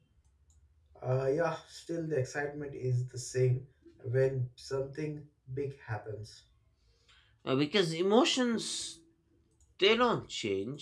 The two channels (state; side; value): identical; both; correlation 1.00